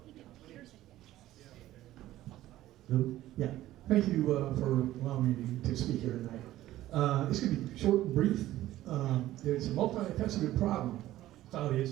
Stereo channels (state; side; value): quieter; left; 14.8 dB